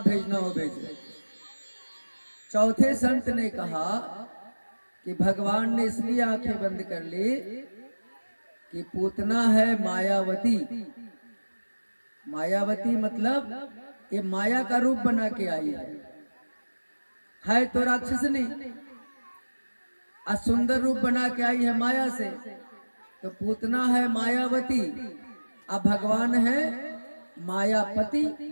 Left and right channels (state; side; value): inverted; both; correlation -1.00